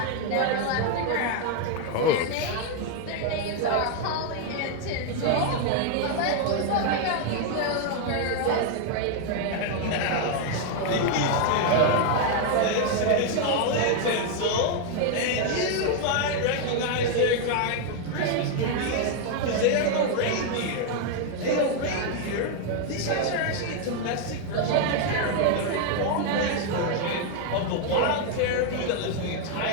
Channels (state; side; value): different; both; correlation 0.01